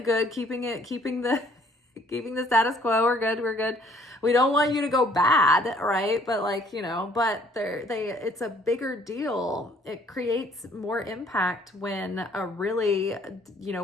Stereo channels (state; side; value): normal; both; correlation 0.60